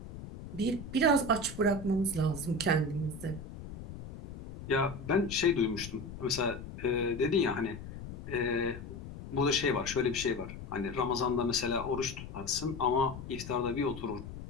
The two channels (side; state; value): left; noise; rumble, 11 dB below the sound